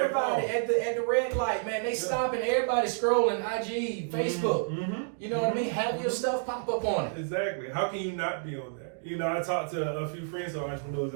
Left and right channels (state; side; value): silent; left; digital silence